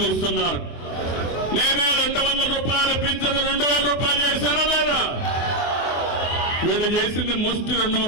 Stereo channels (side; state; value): right; late; 24 ms